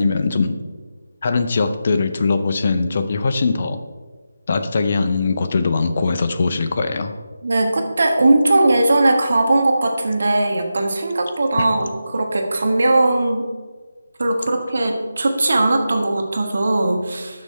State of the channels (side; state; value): both; inverted; correlation -0.90